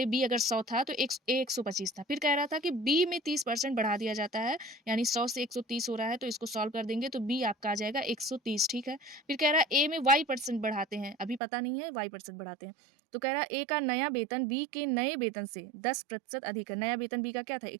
बी अगर 100 था तो ए 125 था। फिर कह रहा था कि बी में 30% बढ़ा दिया जाता है, यानी 100 से 130 हो रहा है, तो इसको सॉल्व कर देंगे तो बी आपका आ जाएगा 130, ठीक है। फिर कह रहा है ए में वाई परसेंट बढ़ाते हैं, अभी पता नहीं है, वाई परसेंट बढ़ाते हैं। तो कह रहा है ए का नया वेतन बी के नए वेतन से 10% अधिक है। नया वेतन बी का क्या था,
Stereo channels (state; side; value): drops out; left; at 11.4 s